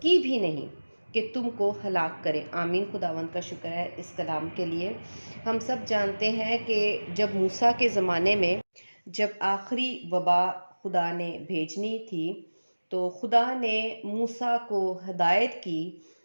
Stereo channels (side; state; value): both; inverted; correlation -1.00